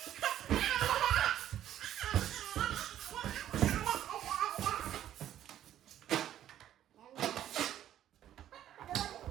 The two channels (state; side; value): quieter; left; 11.6 dB